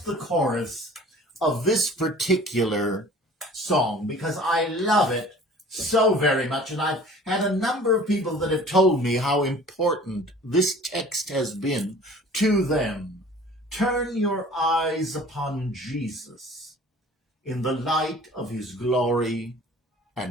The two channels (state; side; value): normal; both; correlation 0.47